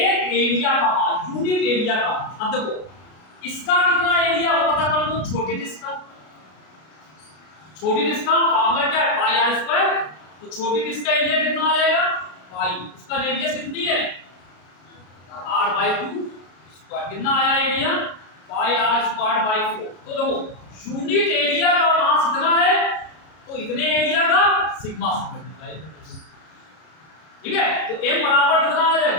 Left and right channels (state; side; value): late; right; 33 ms